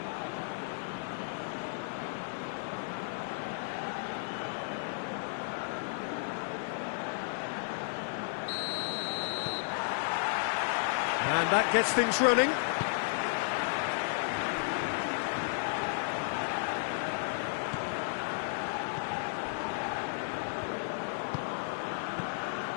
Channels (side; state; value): right; silent; 55 dB below the other